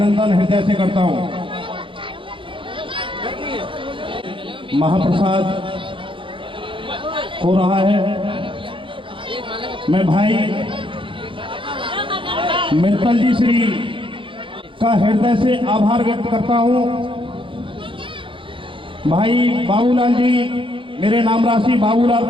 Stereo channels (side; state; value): left; late; 0.25 ms